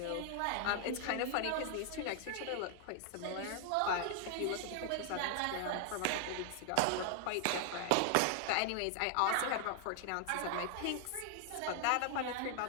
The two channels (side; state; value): both; different; correlation 0.00